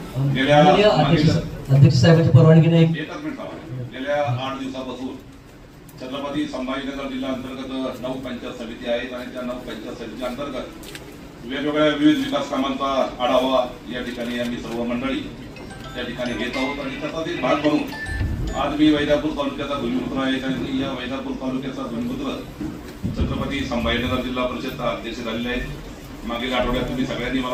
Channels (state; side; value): identical; both; correlation 1.00